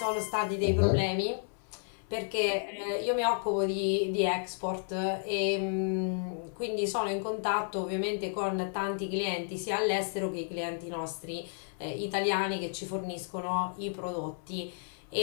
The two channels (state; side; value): silent; right; 56 dB below the other